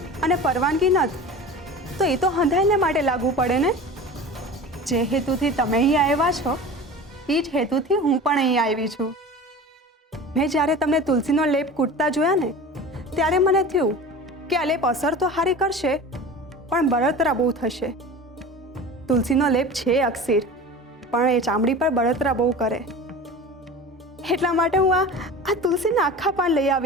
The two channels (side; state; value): both; normal; correlation 0.35